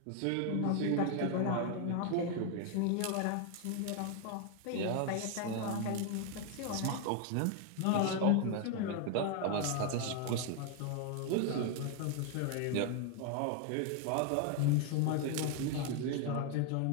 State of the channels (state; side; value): different; both; correlation 0.01